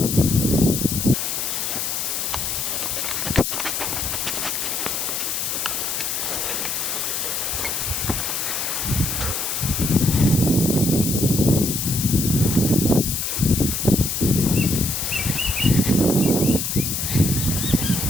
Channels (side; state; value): left; noise; hiss, 1 dB below the sound